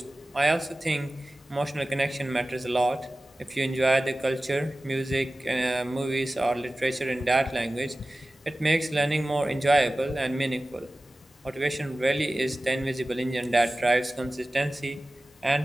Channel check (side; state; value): both; normal; correlation 0.96